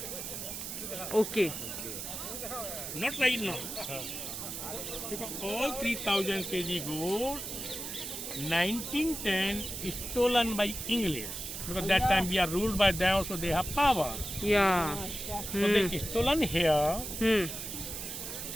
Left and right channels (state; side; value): noise; right; hiss, 6 dB below the sound